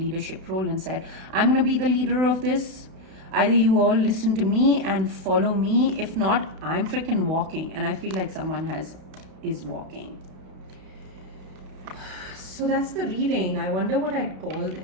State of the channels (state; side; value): late; left; 32 ms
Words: role and said, I'm going to be the leader of this. Either you all listen to me and follow me. If not, I'm freaking walking. And I feel like someone is walking. So that's the reading. I wonder what I'd call